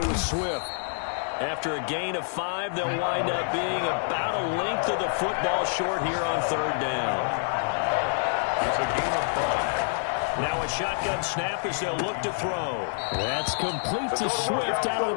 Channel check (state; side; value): silent; right; digital silence